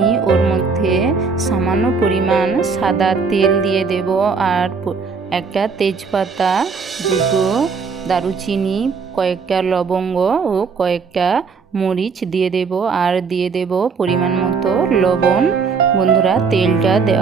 ওর মধ্যে সামান্য পরিমাণ সাদা তেল দিয়ে দেব। আর একটা তেজপাতা, দুটো দারুচিনি, কয়েকটা লবঙ্গ ও কয়েকটা মরিচ দিয়ে দেব। আর দিয়ে দেব পরিমাণ মতো লবণ। বন্ধুরা তেলটা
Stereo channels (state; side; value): quieter; left; 5.2 dB